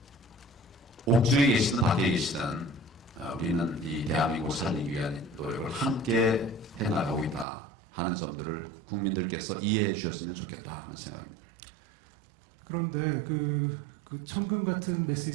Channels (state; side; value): drops out; left; at 7.5 s